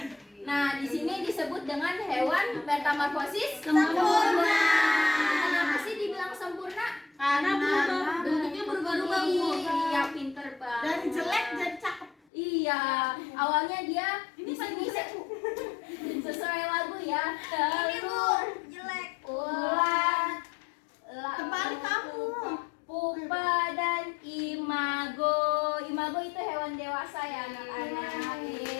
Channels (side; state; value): right; drops out; at 12.2 s